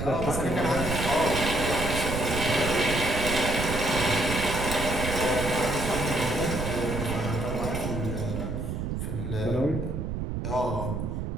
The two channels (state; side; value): noise; right; rumble, 4 dB below the sound